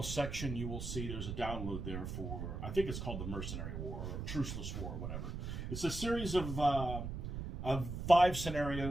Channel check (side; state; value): right; noise; rumble, 5 dB below the sound